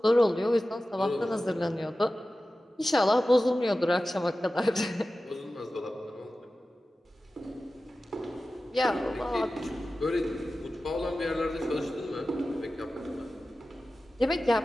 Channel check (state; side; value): normal; both; correlation 0.95